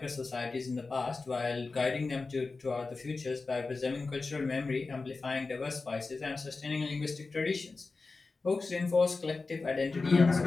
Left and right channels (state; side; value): quieter; right; 3.9 dB